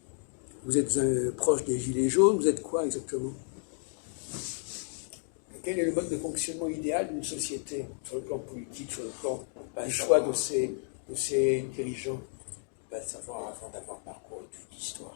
Vous êtes proche des Gilets jaunes? Vous êtes quoi exactement? Quel est le mode de fonctionnement idéal d'une société, sur le plan politique, sur le plan du choix de ses dirigeants? On ne peut pas le savoir avant d'avoir parcouru toute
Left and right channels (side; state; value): right; silent; 56 dB below the other